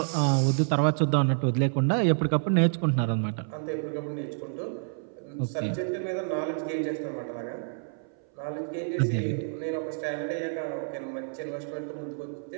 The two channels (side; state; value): left; silent; 59 dB below the other